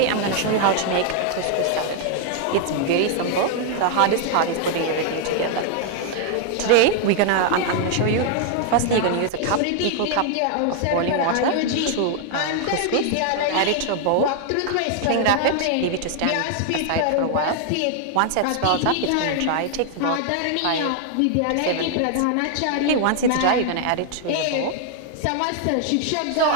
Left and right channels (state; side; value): different; both; correlation 0.00